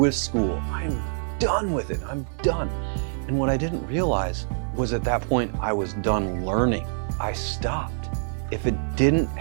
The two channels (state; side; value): silent; left; 61 dB below the other